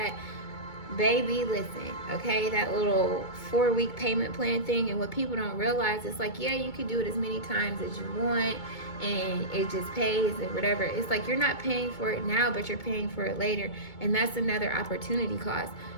Baby, listen, okay, that little 4-week payment plan thing. And what people don't realize is like, yeah, you can do it as many times as you want and it just pays and whatever. It's like you're not paying for it now, but you're paying for it later. And that's another opportunity cost,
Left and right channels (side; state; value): right; late; 2.2 ms